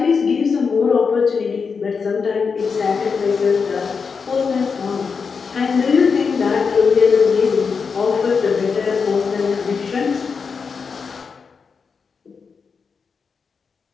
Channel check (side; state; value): right; quieter; 5.5 dB